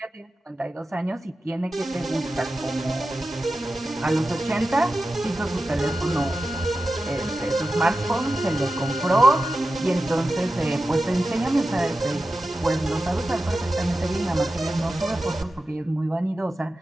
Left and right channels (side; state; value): both; normal; correlation 0.93